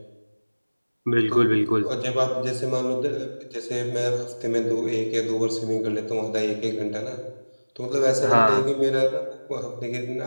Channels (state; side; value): inverted; both; correlation -1.00